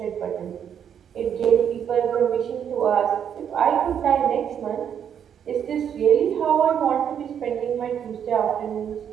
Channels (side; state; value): left; quieter; 8.5 dB